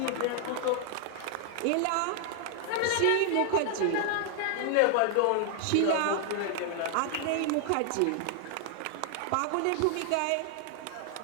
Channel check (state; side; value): different; both; correlation 0.00